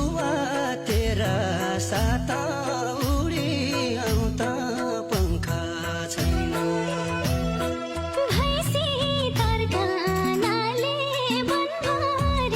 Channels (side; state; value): both; identical; correlation 1.00